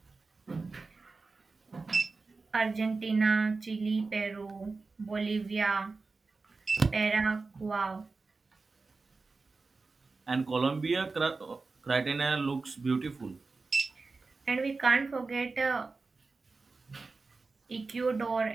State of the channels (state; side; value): quieter; left; 4.0 dB